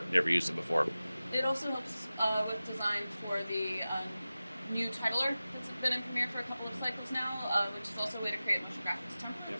used it before. It also helps with design for the new titler that's been in Premiere for a couple of cycles now, which is also a way to create motion graphics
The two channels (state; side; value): inverted; both; correlation -0.96